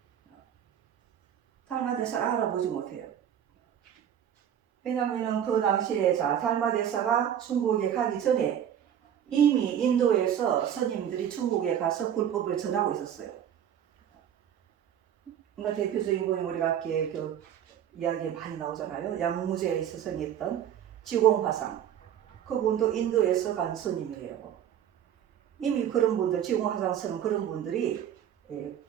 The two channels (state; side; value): quieter; left; 9.7 dB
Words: 달마대사를 알아보지 못해요. 왜냐하면 그 당시에 달마대사가 중국에 가기 전에 이미 인도에서 스님들이 중국에 가서 불법을 전하고 있었어요. 그러니까 대표적인 분이 우리가 아까 그 이야기에 많이 나오잖아요. 양무제에 스승이었던 지공화상. 그분도 인도에서 간 스님이에요. 이미 그런 분들, 지공화상 스님 그런 분들이